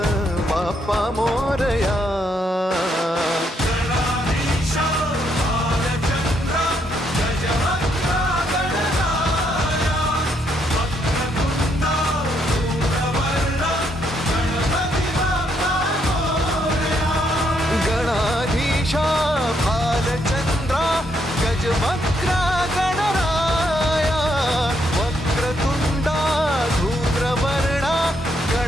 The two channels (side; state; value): both; normal; correlation 0.75